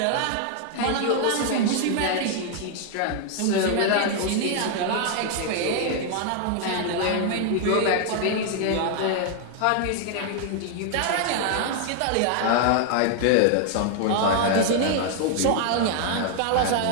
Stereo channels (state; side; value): different; both; correlation 0.00